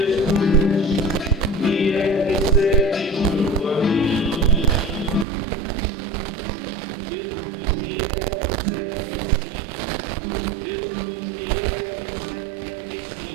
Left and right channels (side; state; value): left; drops out; at 5.2 s